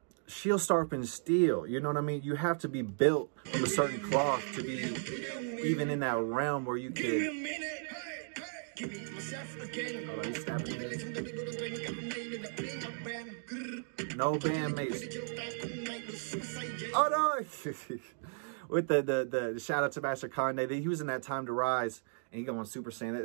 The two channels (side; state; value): left; silent; digital silence